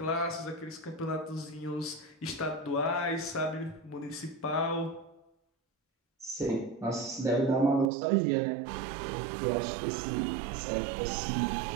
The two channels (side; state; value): left; drops out; at 7.9 s